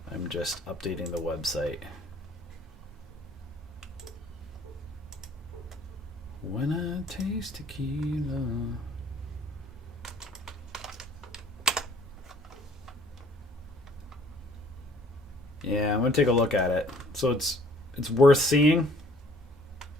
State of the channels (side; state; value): both; normal; correlation 0.57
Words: I'm just updating the website. When I taste tequila. Yeah, I'm going to take a look at it. So it's worth seeing.